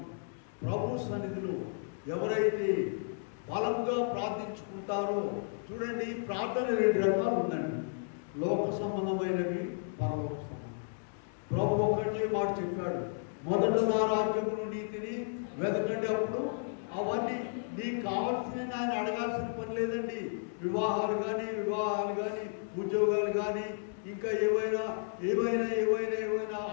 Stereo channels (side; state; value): right; silent; digital silence